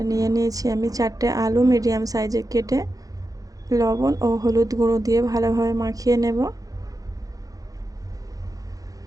নিয়ে নিয়েছি আমি 4টে আলু মিডিয়াম সাইজে কেটে লবণ ও হলুদ গুঁড়ো দিয়ে ভালোভাবে মাখিয়ে নেব।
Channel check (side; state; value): left; late; 0.17 ms